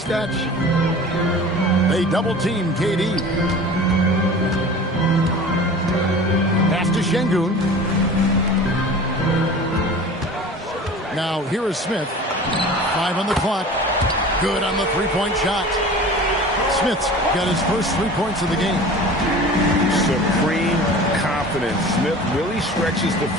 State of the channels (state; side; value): normal; both; correlation 0.39